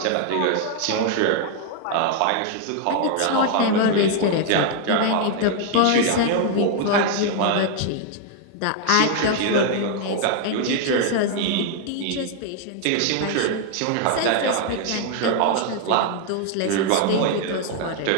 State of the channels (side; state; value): both; different; correlation 0.00